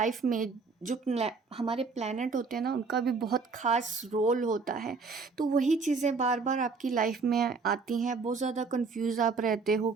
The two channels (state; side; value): quieter; left; 4.6 dB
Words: में जो हमारे प्लैनेट होते हैं ना, उनका भी बहुत ख़ास रोल होता है। तो वही चीज़ें बार बार आपकी लाइफ में आती हैं, बहुत ज़्यादा कंफ्यूज आप रहते हो,